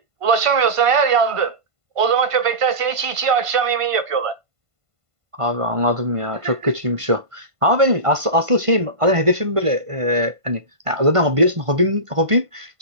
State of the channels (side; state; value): left; late; 1.5 ms